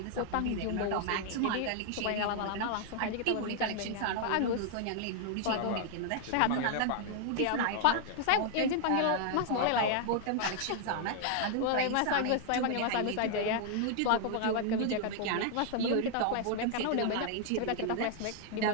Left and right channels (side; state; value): both; different; correlation 0.00